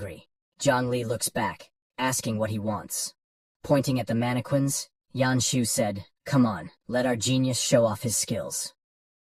Jiang Li looks back, asking what he wants. Pointing at the mannequins, Yanshu said, come on, let our genius show off his skills.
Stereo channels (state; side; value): identical; both; correlation 1.00